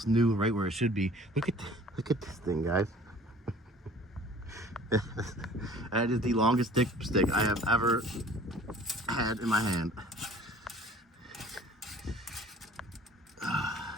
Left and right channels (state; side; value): normal; both; correlation 0.49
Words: new, right where it should be. Look at this thing, guys. That is the longest dipstick I have ever had in my hand.